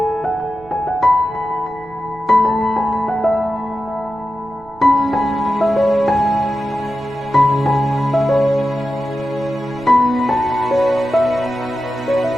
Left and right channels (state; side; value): noise; right; rumble, 24 dB below the sound